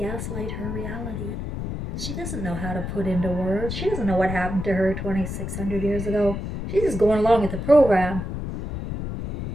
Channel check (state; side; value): noise; left; rumble, 5 dB below the sound